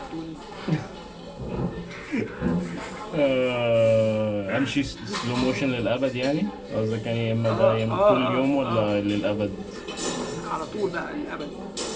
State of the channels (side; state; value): both; identical; correlation 1.00